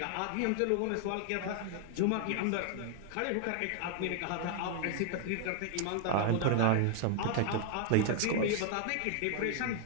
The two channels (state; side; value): different; both; correlation 0.00